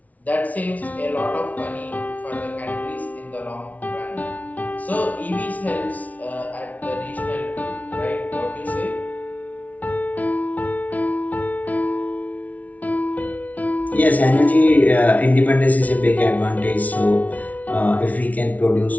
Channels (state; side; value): late; right; 0.072 ms